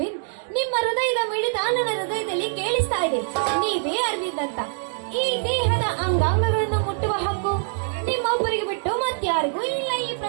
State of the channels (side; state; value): left; silent; 63 dB below the other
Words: ನಿಮ್ಮ ಹೃದಯದ ಮಿಡಿತ ನನ್ನ ಹೃದಯದಲ್ಲಿ ಕೇಳಿಸ್ತಾ ಇದೆ. ನೀವೇ ಅರವಿಂದ್ ಅಂತ. ಈ ದೇಹದ ಅಂಗಾಂಗಗಳನ್ನು ಮುಟ್ಟುವ ಹಕ್ಕು ನಿಮ್ಮೊಬ್ಬರಿಗೆ ಬಿಟ್ಟು ಮತ್ತಾರಿಗೂ ಇಲ್ಲ ಈ